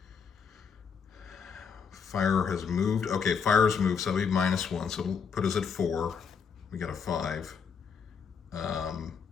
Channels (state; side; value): quieter; right; 6.4 dB